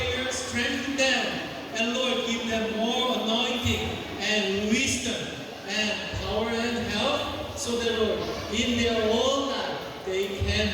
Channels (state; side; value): identical; both; correlation 1.00